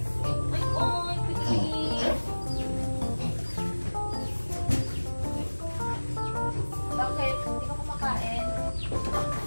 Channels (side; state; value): both; inverted; correlation -1.00